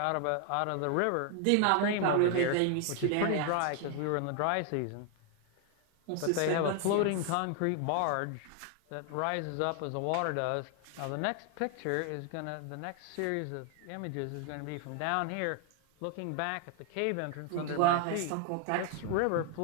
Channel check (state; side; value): different; both; correlation 0.00